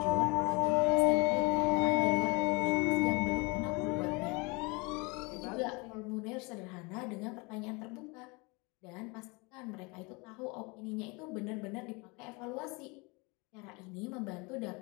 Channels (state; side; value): quieter; right; 28.0 dB